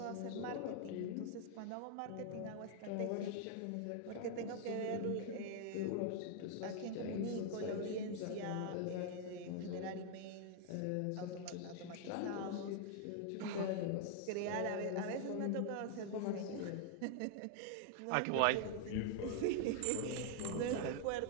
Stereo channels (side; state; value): both; different; correlation 0.00